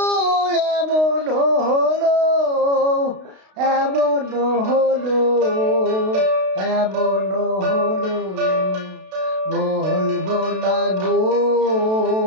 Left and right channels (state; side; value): late; left; 32 ms